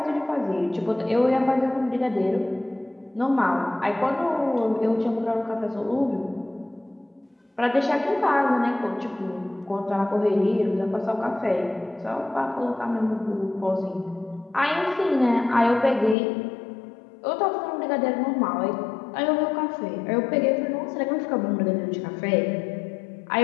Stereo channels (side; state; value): right; drops out; at 16.2 s